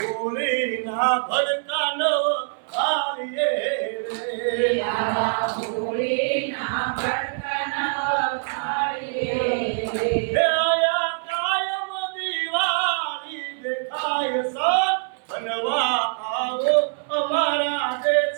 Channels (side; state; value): left; silent; 63 dB below the other